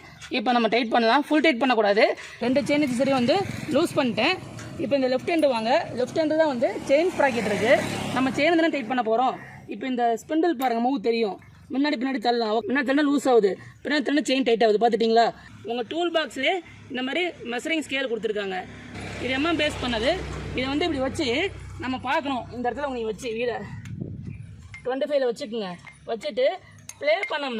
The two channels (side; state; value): both; identical; correlation 1.00